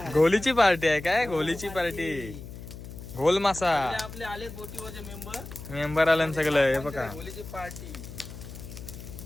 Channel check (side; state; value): left; noise; hum, 12 dB below the sound